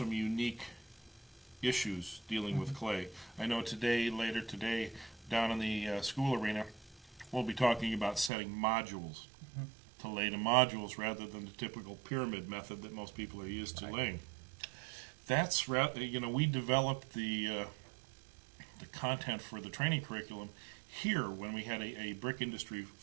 unique issues dealing with clay. I know later today, down in the school arena, we'll be talking about setting modules to lay to modules rather than the typical pyramid method that most people are used to laying. That's we developed the content for the training curriculum here when we had a brick industry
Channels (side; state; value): left; drops out; at 8.3 s